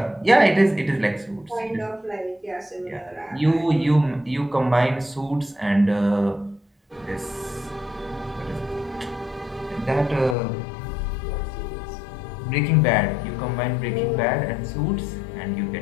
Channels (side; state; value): right; drops out; at 10.4 s